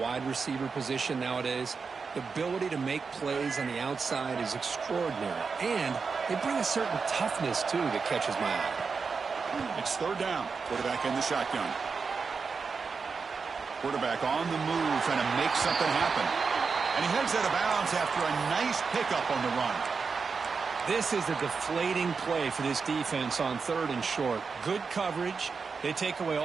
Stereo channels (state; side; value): quieter; left; 5.1 dB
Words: receiver position nowadays. The ability to make plays on the outside is extraordinary. And they bring a certain toughness, too, that catches my eye. It's third down. Quarterback in the shotgun. Quarterback on the move, trying to make something happen. And he heads out of bounds after a nice pickup on the run. This is a deflating play for this defense on third and short. Good coverage. They take away